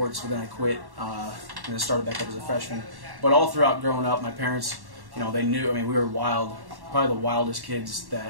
But then I quit and then started back up as a freshman. But all throughout growing up, my parents, they knew. I mean, we were wild, probably the wildest kids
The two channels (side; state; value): left; late; 1.1 ms